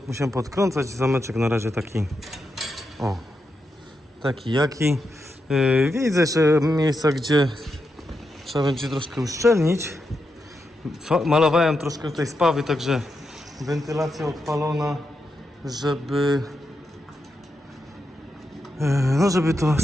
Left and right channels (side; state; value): both; normal; correlation 0.85